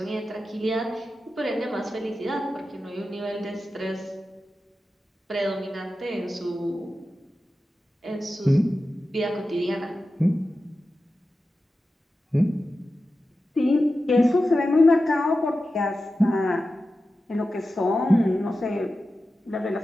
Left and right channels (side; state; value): both; normal; correlation 0.93